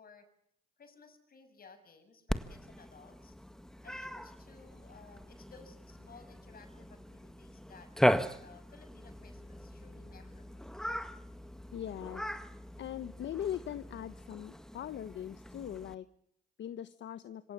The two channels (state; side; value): normal; both; correlation 0.85